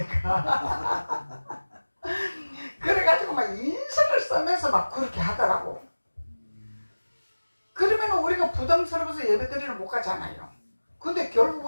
그래가지고 막 인상을 쓰면서 막 그렇게 하더라고. 그러면 우리가 부담스러워서 예배드리러 못 가잖아요. 근데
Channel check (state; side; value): inverted; both; correlation -1.00